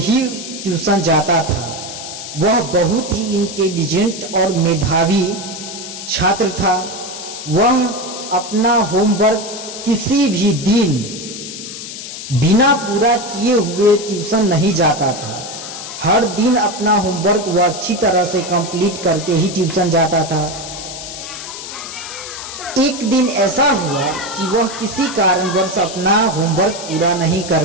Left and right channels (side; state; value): left; noise; hiss, 10 dB below the sound